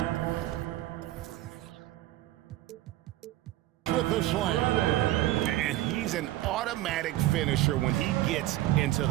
with the slam. And he's an automatic finisher when he gets into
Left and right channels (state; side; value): quieter; left; 15.4 dB